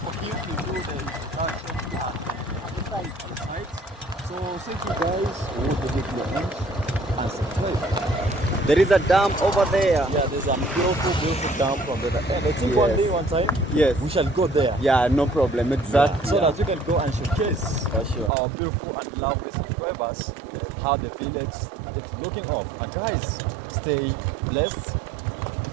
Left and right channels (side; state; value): left; drops out; at 18.3 s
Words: him to do the introduction inside. So I'll say to you guys, hold the video and subscribe. There is a dam over there. Yeah, there's a beautiful dam from there. And I think one day, one time, Yes. we shall go there. Yeah, no problem. Exactly. So that we can go and showcase For sure. our beautiful and lovely subscribers, how the village is looking up. And guys, stay blessed